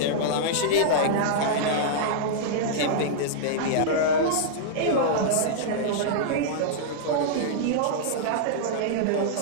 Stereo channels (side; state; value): both; different; correlation -0.02